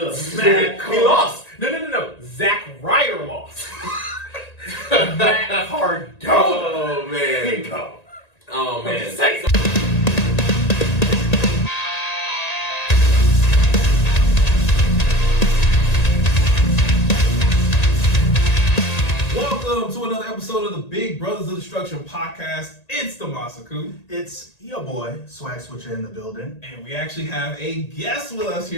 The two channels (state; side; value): late; right; 1.8 ms